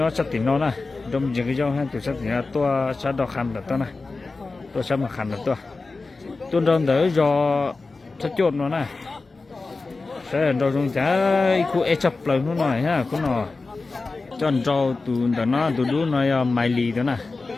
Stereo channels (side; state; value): right; quieter; 3.8 dB